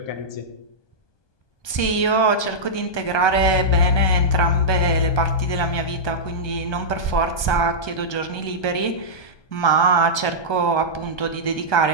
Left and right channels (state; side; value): late; right; 1.2 ms